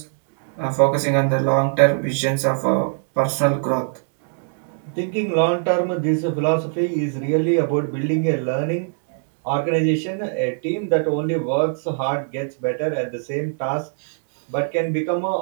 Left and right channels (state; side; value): silent; left; 64 dB below the other